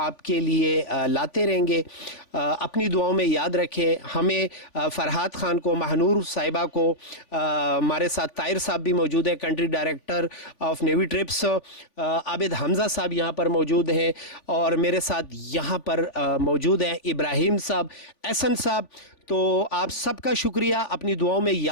کے لیے لاتے رہیں گے. اپنی دعاؤں میں یاد رکھیں ہمیں. فرحات خان کو, مہنور صاحبہ کو, ہمارے ساتھ طاہر صاحب بھی موجود ہیں, country director of navy trips. Abid Hamza صاحب یہاں پر موجود ہیں, اور میرے ساتھ یہاں پر موجود ہیں ابراہیم صاحب, احسن صاحب. تو آپ سب کا شکریہ, اپنی دعاؤں میں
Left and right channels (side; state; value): right; late; 3.5 ms